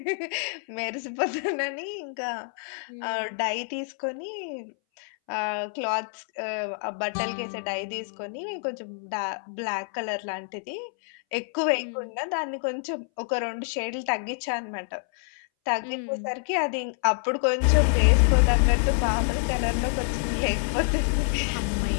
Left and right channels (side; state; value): right; silent; 60 dB below the other